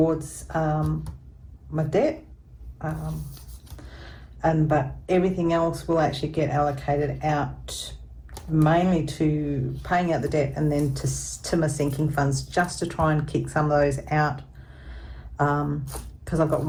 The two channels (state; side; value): identical; both; correlation 1.00